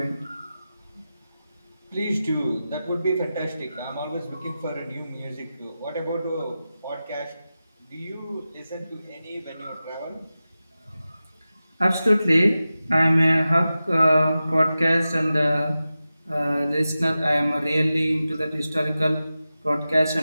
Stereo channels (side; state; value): both; inverted; correlation -0.94